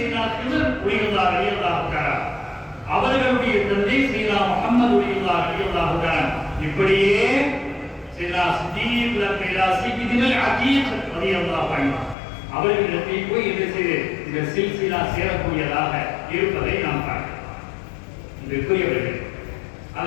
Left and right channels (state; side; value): drops out; right; at 12.2 s